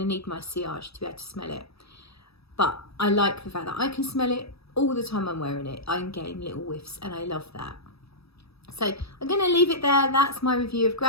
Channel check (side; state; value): right; late; 0.77 ms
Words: need my sillage to be able to smell it. But I like the fact that I can smell it all the time I'm wearing it. I'm getting little whiffs and I love that. So I'm going to leave it there. That's my review of